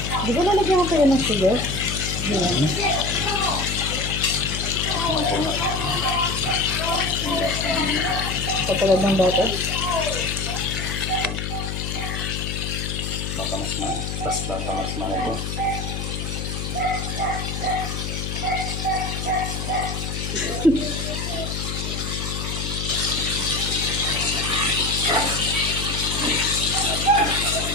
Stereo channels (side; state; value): left; noise; hum, 4 dB below the sound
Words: Di ba lalagyan mo kayo ng sugar? Katulad ng dati? Baka mas ito.